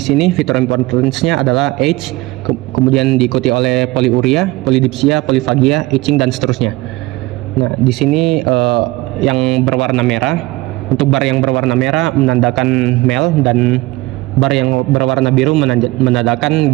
fitur importance-nya adalah age, kemudian diikuti oleh polyuria, polydipsia, polyphagia, itching, dan seterusnya. Nah, di sini yang berwarna merah, untuk bar yang berwarna merah menandakan male dan bar yang berwarna biru menandakan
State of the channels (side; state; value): left; quieter; 20.1 dB